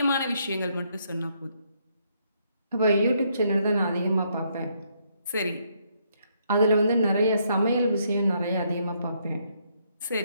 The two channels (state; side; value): inverted; both; correlation -0.73